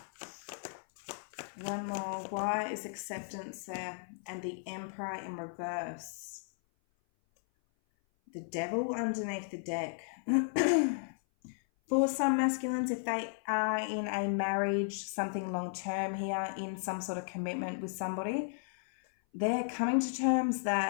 One more. Why is acceptance there? And the Emperor in reverse. The Devil underneath the deck. For some masculines, if they are in a marriage, something long-term here, in some sort of commitment with somebody, they're coming to terms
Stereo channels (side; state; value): right; silent; 55 dB below the other